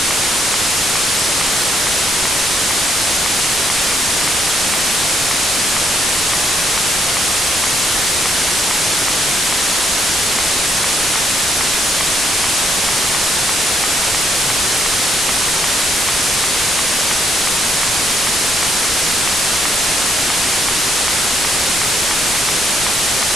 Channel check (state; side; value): normal; both; correlation 0.73